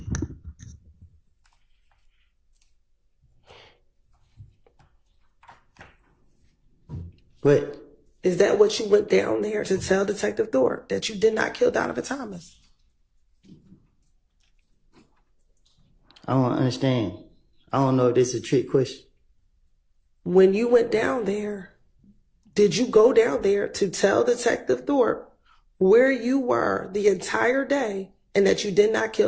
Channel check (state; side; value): identical; both; correlation 1.00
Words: What? Is that what you went down there to tell Detective Thorpe, that you did not kill Donovan Thomas? I don't understand. I don't know if this is a trick question. When you went down there, did you go down there to tell Detective Thorpe where you were the entire day and that you did not